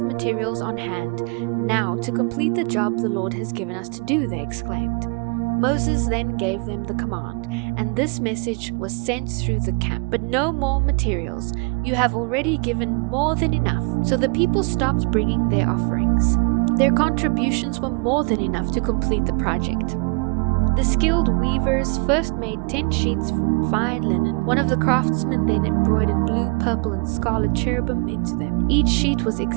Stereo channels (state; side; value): quieter; left; 32.2 dB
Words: on hand now to complete the job the Lord has given us to do," they exclaimed. Moses then gave them the command, and this message was sent through the camp. "But no more materials. You have already given more than enough." So the people stopped bringing their offerings. Their contributions were more than enough to complete the project. The skilled weavers first made 10 sheets from fine linen. One of the craftsmen then embroidered blue, purple, and scarlet cherubim into them. Each sheet was